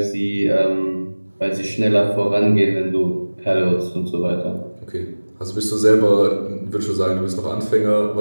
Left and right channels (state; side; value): inverted; both; correlation -1.00